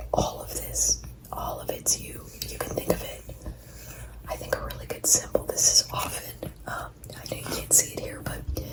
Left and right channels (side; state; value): both; identical; correlation 1.00